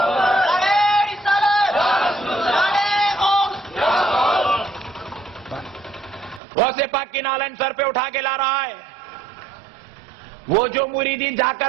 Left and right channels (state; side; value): drops out; left; at 6.4 s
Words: غوث پاک کی نالین سر پہ اٹھا کے لا رہا ہے. وہ جو مریدین جا